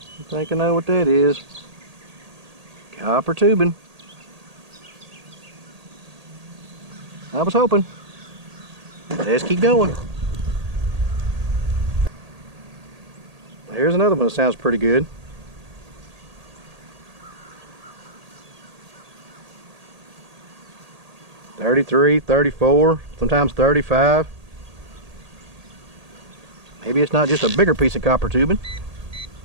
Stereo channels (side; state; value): left; late; 1.8 ms